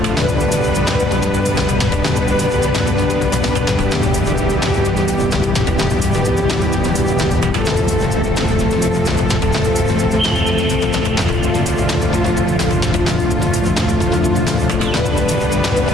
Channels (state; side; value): normal; both; correlation 0.67